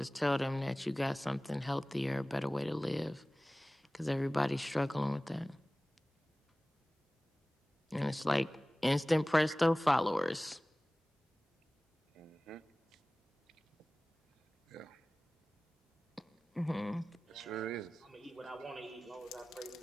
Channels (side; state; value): both; normal; correlation 0.98